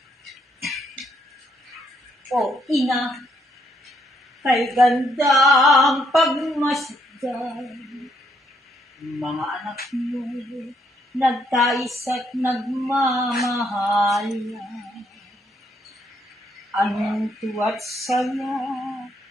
O ina, kay gandang pagmasdan, mga anak mo, nagtais at nagmamahalan. Anong tuwa't saya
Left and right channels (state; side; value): normal; both; correlation 0.73